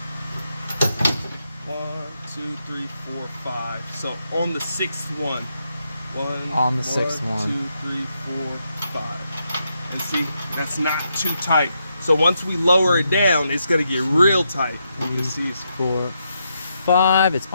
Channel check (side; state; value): both; inverted; correlation -0.81